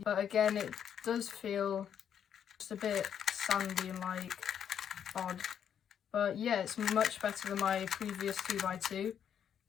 again, it does feel just a bit sandy and like odd. But yeah, it's much better than my previous 2x2.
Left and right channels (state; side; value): quieter; right; 8.7 dB